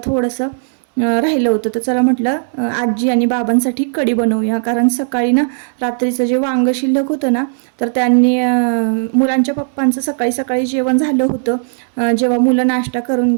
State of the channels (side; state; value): left; silent; digital silence